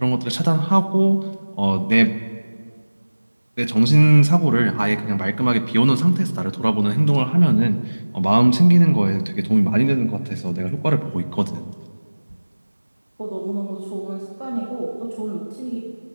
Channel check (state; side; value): inverted; both; correlation -1.00